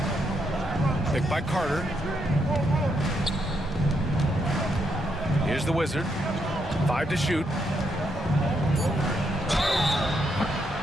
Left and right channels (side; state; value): both; normal; correlation 0.78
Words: Picked by Carter. Here's the Wizard. 5 to shoot.